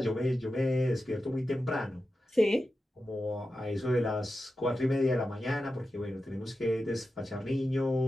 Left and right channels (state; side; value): normal; both; correlation 0.91